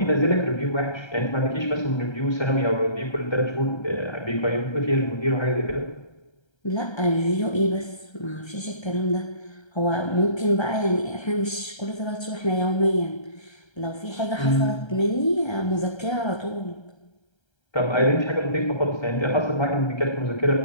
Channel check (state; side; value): late; right; 1.3 ms